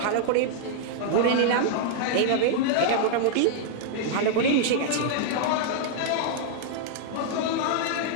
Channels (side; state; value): both; different; correlation -0.01